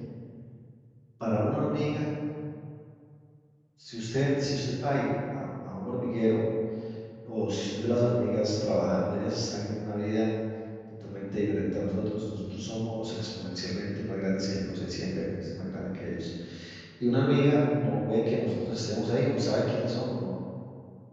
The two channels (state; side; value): identical; both; correlation 1.00